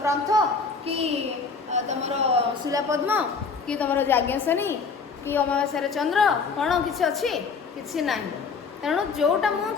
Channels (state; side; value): quieter; right; 5.1 dB